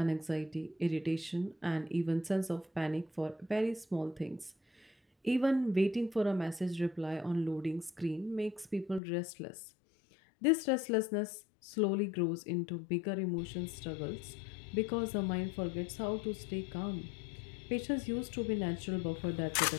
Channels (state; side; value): drops out; right; at 9.0 s